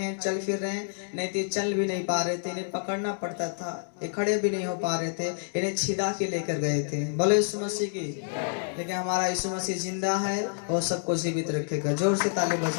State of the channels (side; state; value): right; silent; digital silence